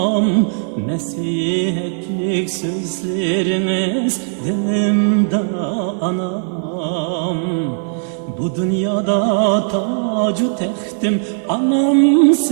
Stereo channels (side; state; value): left; silent; digital silence